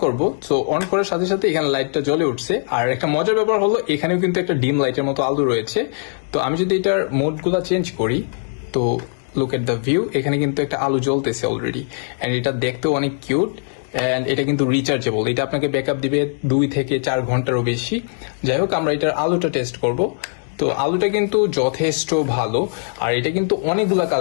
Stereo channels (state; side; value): silent; right; digital silence